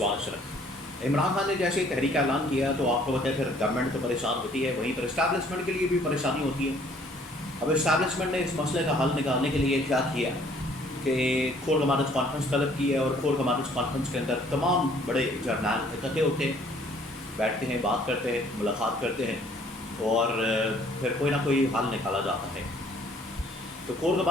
اشرف۔ عمران خان نے جیسے ہی تحریک کا اعلان کیا تو آپ کو پتہ ہے پھر گورنمنٹ تو پریشان ہوتی ہے، وہیں پر اسٹیبلشمنٹ کے لیے بھی پریشانی ہوتی ہے۔ اب اسٹیبلشمنٹ نے اس مسئلے کا حل نکالنے کے لیے کیا کیا کہ کور کمانڈرز کانفرنس طلب کی ہے، اور کور کمانڈرز کانفرنس کے اندر تمام بڑے جرنیل اکٹھے ہوتے ہیں، بیٹھتے ہیں، بات کرتے ہیں، ملاقات کرتے ہیں، اور پھر کوئی نہ کوئی حل نکالا جاتا ہے۔ تو کور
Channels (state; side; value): normal; both; correlation 0.59